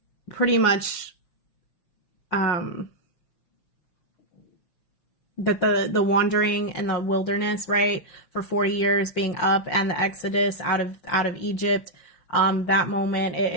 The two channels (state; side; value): late; right; 5.7 ms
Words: pretty much that the wandering in the wilderness, right, for 40 years being up, and the Exodus out of Egypt, that moment,